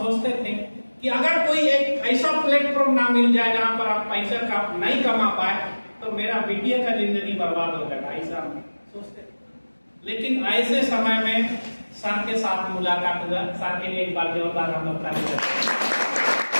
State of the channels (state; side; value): inverted; both; correlation -1.00